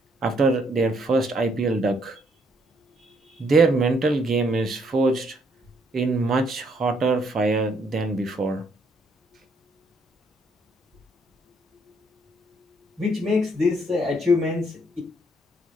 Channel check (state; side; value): normal; both; correlation 0.70